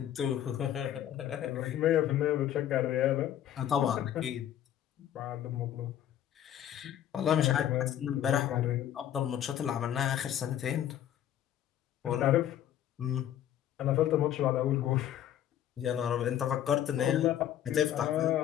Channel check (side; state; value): right; quieter; 11.1 dB